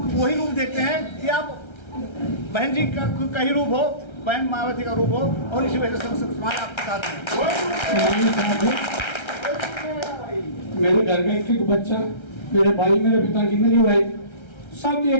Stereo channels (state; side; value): late; right; 1.3 ms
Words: वही रूप देखते हैं कि आप बहन जी का ही रूप हो, बहन मायावती का रूप हो और इसी वजह से समाज आपके साथ है। मेरे घर का एक एक बच्चा, मेरे भाई, मेरे पिता की, मेरी वाइफ, सब